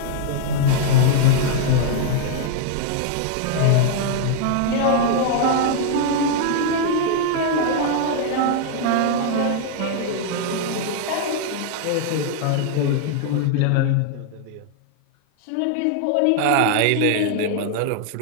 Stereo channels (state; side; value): different; both; correlation -0.01